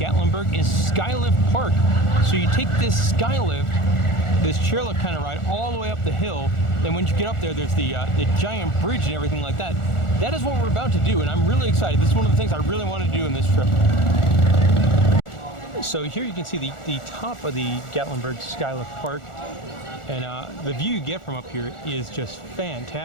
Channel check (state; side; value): late; right; 1.4 ms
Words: is Skylift Park. So you take this Skylift, this chairlift kind of ride, all the way up the hill. Then when you get up there, there's the giant bridge and everything like that. That is what we're about to do, and I'm really excited. This is one of the things I really want to do in this trip. So here you can see the top of the Gatlinburg Skylift Park, and the view you get from up here is just